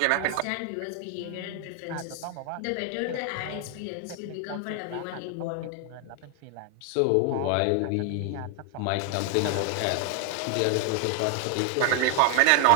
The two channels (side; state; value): both; different; correlation 0.00